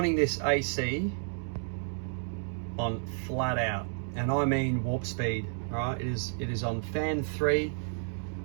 this AC on flat out, and I mean warp speed, all right? It is on fan 3,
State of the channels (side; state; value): left; silent; 57 dB below the other